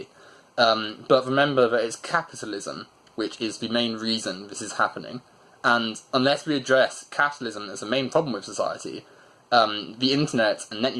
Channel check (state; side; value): identical; both; correlation 1.00